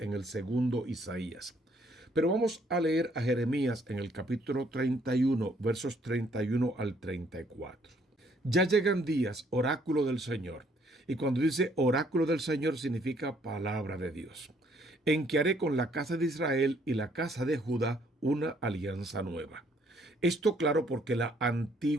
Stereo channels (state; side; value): normal; both; correlation 0.65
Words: el segundo Isaías. Pero vamos a leer a Jeremías en el capítulo 31, versos 31 al 34. Ya llegan días, oráculo del Señor. Y cuando dice oráculo del Señor significa palabra de Dios, en que haré con la casa de Israel y la casa de Judá una alianza nueva. Esto claro porque la